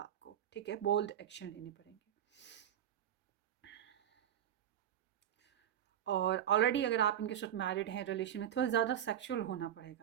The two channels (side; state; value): left; quieter; 10.5 dB